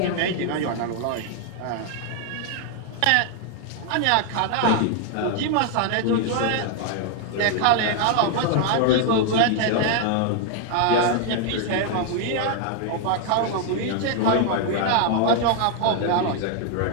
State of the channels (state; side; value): different; both; correlation 0.00